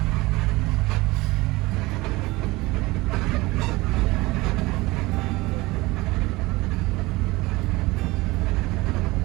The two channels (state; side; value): quieter; left; 21.2 dB